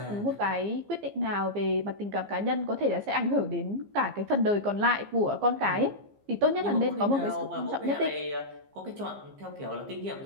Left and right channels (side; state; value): left; late; 15 ms